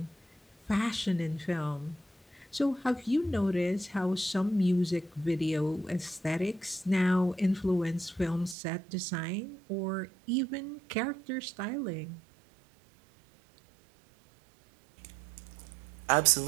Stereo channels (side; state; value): left; drops out; at 8.6 s